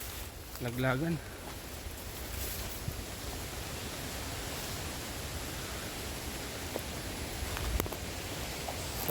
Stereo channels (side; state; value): both; identical; correlation 1.00